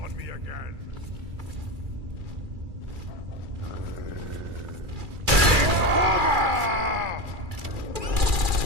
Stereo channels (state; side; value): late; left; 2.4 ms